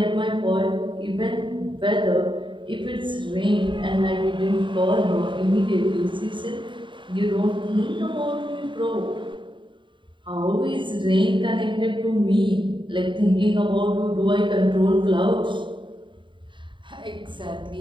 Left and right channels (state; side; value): late; left; 0.23 ms